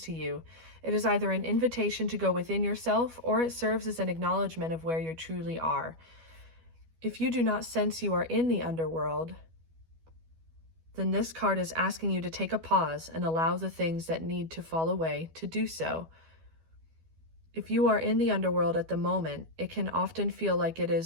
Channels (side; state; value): left; late; 12 ms